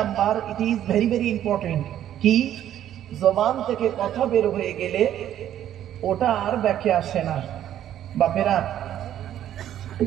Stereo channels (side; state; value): left; quieter; 11.3 dB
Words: it is very very important, কি জবান থেকে কথা বের হয়ে গেলে ওটা আর ব্যাকে আসে না। বাপেরা,